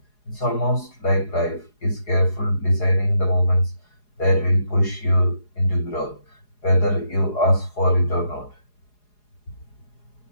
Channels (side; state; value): right; late; 4.8 ms